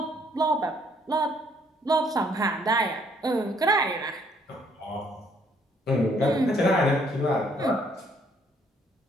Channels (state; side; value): normal; both; correlation 0.65